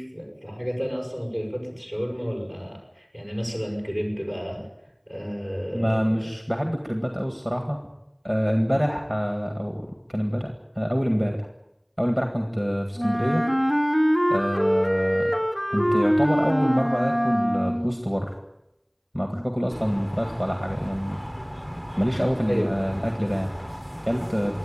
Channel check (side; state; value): both; identical; correlation 1.00